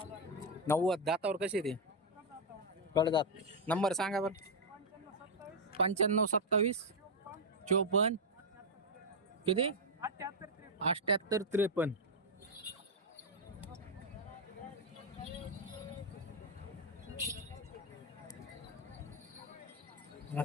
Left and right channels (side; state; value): both; normal; correlation 0.00